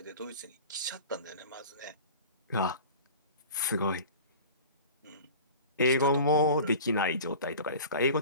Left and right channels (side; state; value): both; inverted; correlation -0.39